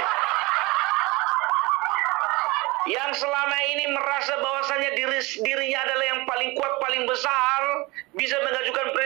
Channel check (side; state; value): left; quieter; 23.5 dB